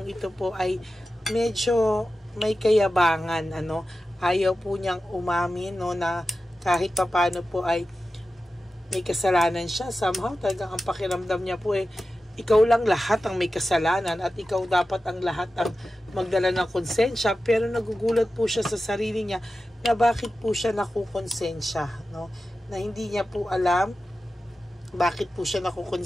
ito po ay medyo may kayabangan, ano? Ayaw po niyang umamin, no, na kahit papano po ay may kasalanan siya. Somehow talagang ang pakiramdam niya po ikaw lang lahat ang may kasalanan, at ikaw dapat ang lahat ang magdala ng konsensya. Pero nagugulat po siya sa sarili niya na bakit po siya nakukonsensya, no? Na hindi niya po alam bakit po siya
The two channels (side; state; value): both; normal; correlation 0.93